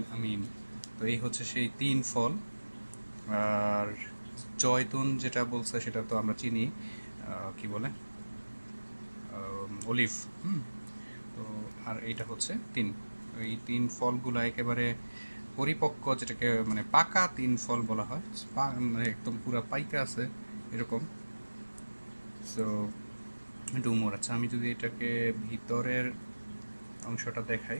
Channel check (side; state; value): both; inverted; correlation -1.00